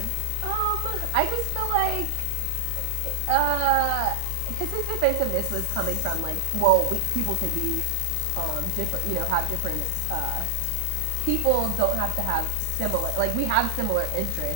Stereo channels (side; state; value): both; different; correlation 0.00